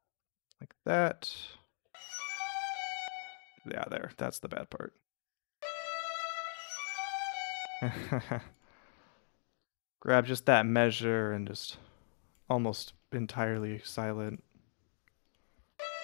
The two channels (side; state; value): right; silent; digital silence